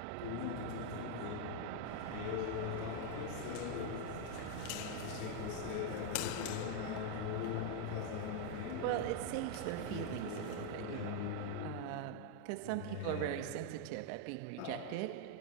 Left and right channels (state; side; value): different; both; correlation 0.00